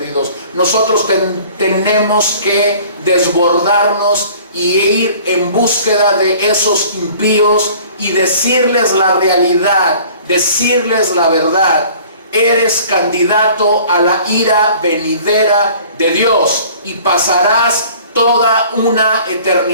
Nosotros tenemos que desbordarnos y ir en búsqueda de esos impíos y decirles la realidad, decirles la verdad. Eres candidato a la ira venidera de Dios y pasarás toda una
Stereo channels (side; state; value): both; inverted; correlation -0.49